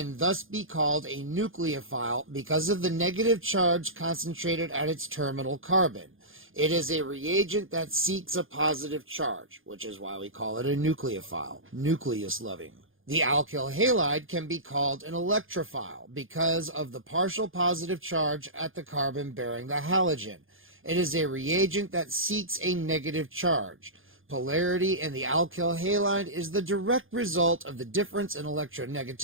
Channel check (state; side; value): late; left; 0.59 ms